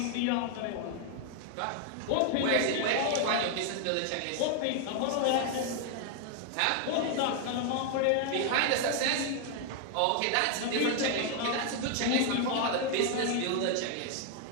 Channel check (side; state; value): both; different; correlation 0.00